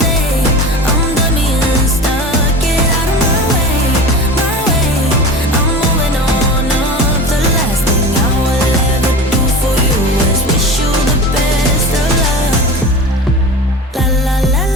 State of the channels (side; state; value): both; normal; correlation 0.32